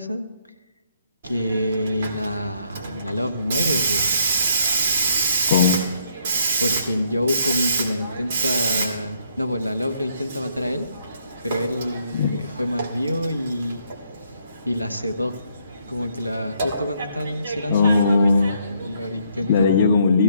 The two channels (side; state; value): both; inverted; correlation -0.69